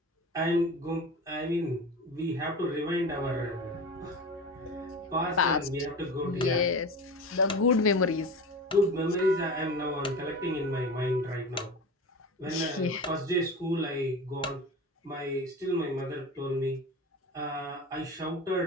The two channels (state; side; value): normal; both; correlation 0.31